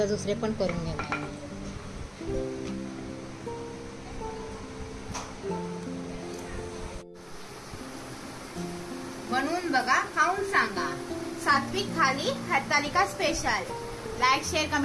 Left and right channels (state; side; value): identical; both; correlation 1.00